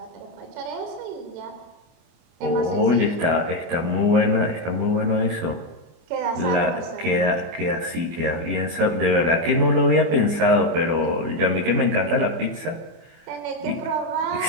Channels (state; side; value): late; left; 24 ms